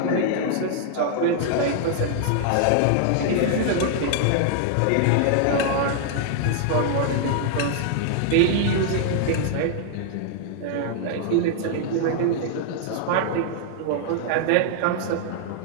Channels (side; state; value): both; different; correlation 0.00